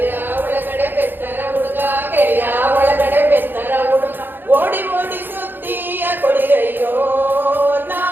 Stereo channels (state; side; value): late; left; 0.096 ms